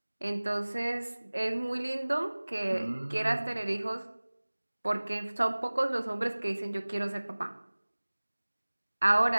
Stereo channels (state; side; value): inverted; both; correlation -1.00